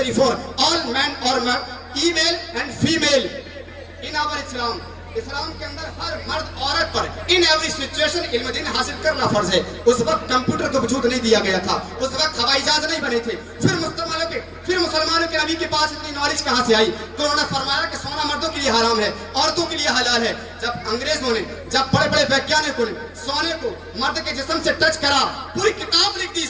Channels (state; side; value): identical; both; correlation 1.00